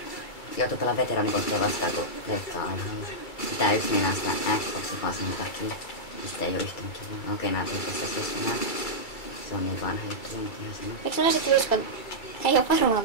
Joutuu pelaa veteraanipotteja vastaan, kun leikkaa aiheella. Tää yksi mennään sitä Xboxin vaan sen takia. Mistä ei oo yhtään kiinni. Okei, nää tuli tästä keskenään. Se on niin vanha juttu, on ihan sama. Eikö mä sit uskon? Ei oo varmaan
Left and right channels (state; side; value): late; right; 2.3 ms